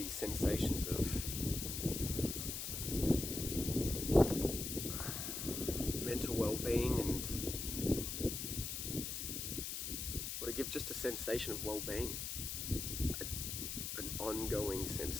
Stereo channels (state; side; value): noise; left; hiss, 3 dB below the sound